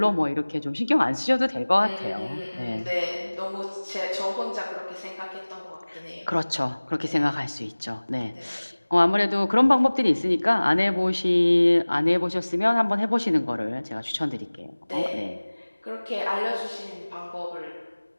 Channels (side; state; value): both; inverted; correlation -1.00